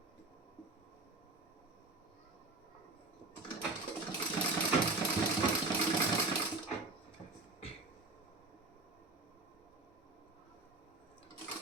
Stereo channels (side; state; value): left; quieter; 3.3 dB